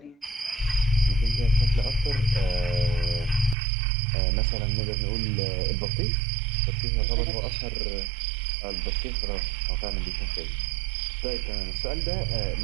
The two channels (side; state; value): left; drops out; at 3.6 s